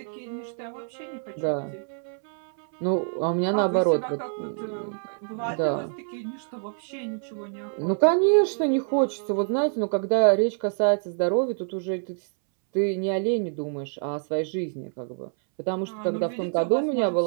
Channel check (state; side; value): silent; left; 61 dB below the other